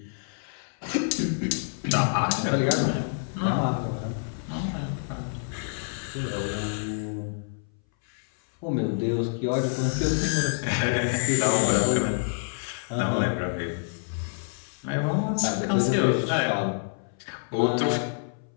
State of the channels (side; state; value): right; silent; 60 dB below the other